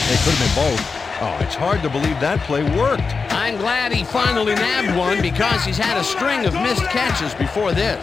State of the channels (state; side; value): quieter; right; 4.8 dB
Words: It could have been both. Oh, it's hard to believe that play worked. I'm glad he finally nabbed one because he's had a string of missed catches before this.